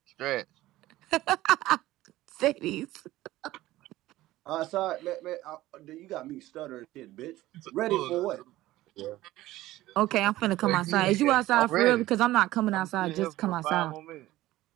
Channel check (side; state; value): left; quieter; 16.4 dB